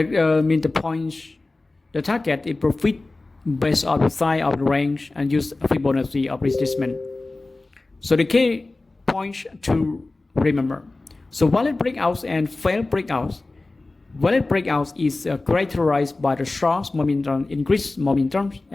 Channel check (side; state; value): right; quieter; 3.2 dB